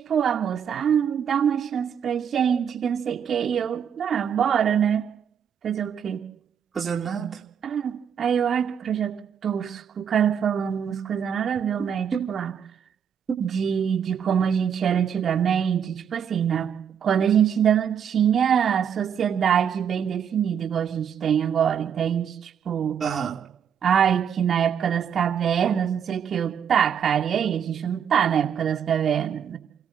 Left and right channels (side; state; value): left; quieter; 8.0 dB